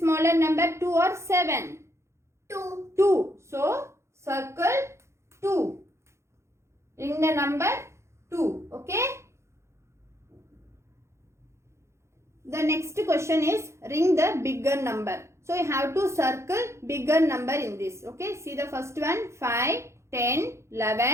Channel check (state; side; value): late; left; 0.13 ms